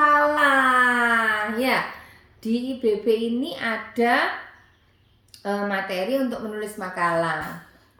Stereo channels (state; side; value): identical; both; correlation 1.00